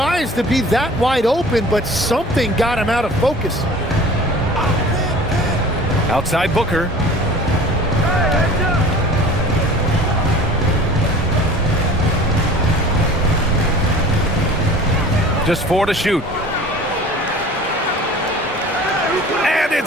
to be that wide open, but something got him out of focus. Outside Booker. Just 4 to shoot. And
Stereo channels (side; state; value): both; normal; correlation 0.43